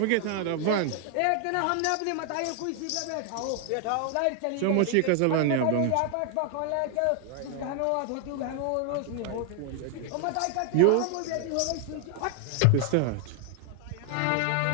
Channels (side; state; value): both; different; correlation 0.00